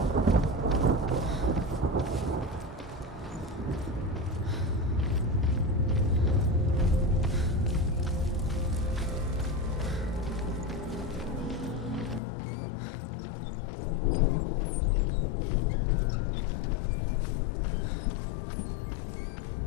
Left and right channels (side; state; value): right; drops out; at 12.2 s